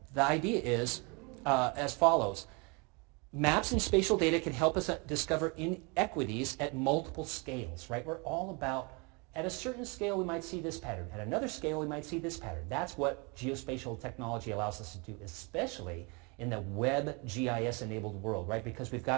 the idea is as follows. Maps and spatial data can help us discover inequities at multiple scales, right? We're all about, at a certain scale we might see this pattern, at another scale we might see this pattern. That's what geospatial technology allows us to do, especially in the web GIS-enabled world, right? Because we've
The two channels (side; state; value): left; quieter; 30.8 dB